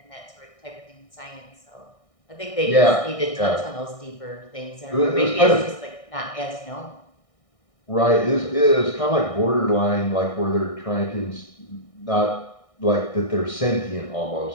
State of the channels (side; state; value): right; late; 1.6 ms